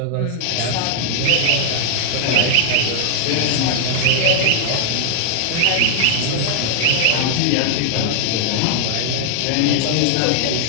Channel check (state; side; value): different; both; correlation 0.00